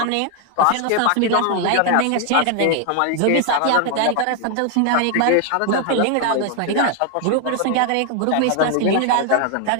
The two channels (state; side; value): different; both; correlation 0.00